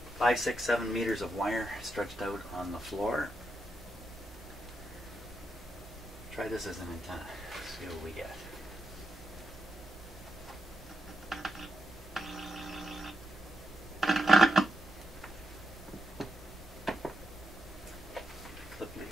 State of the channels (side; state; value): both; normal; correlation 0.84